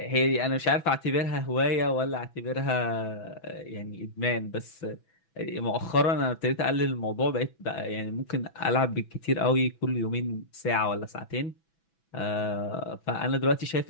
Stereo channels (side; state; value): right; late; 6.0 ms